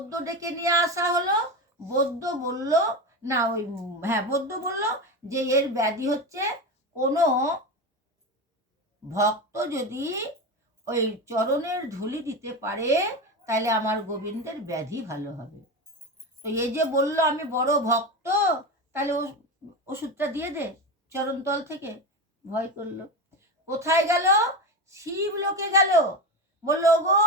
ডেকে নিয়ে আসা হলো। বৈদ্য বলল, না ওই বৈদ্য বলল যে এর ব্যাধি হচ্ছে কোনো ভক্ত যদি ওই চরণের ধুলি দিতে পারে তাহলে আমার গোবিন্দের ব্যাধি ভালো হবে। তো এই যে বলল আমি বড় ভক্ত, তাহলে ওষুধটা দিয়ে দে চরণতল থেকে। ভয় করলো। কোথায় গেল? শিব লোকে গেল। বললো, গো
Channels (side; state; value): both; normal; correlation 0.19